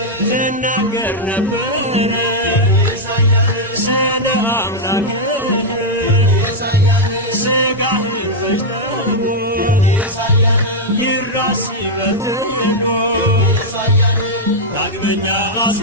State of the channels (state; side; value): normal; both; correlation -0.03